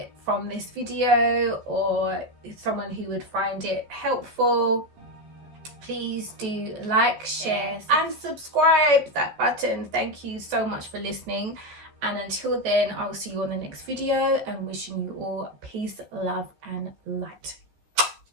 from this video, or someone who would find it helpful, please do like, share and subscribe. That button. Thank you so much for listening. And until then, I'll see you on the next video, and wishing you all peace, love and light.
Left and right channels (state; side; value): late; left; 14 ms